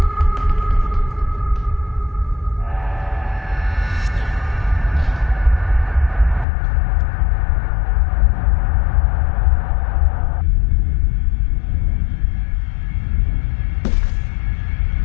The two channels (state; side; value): drops out; right; at 6.5 s